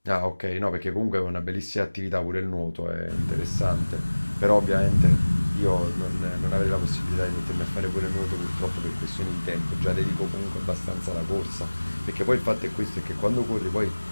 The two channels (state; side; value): inverted; both; correlation -1.00